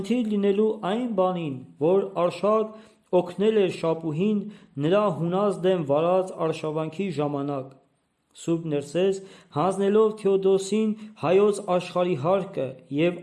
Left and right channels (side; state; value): both; identical; correlation 1.00